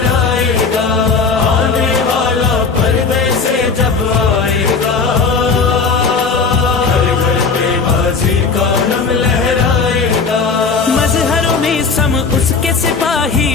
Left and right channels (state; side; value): quieter; right; 4.9 dB